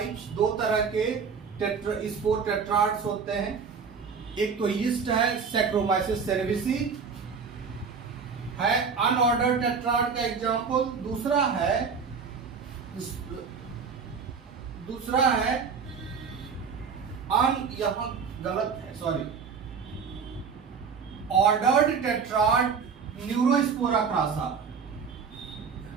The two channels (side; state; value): left; quieter; 5.8 dB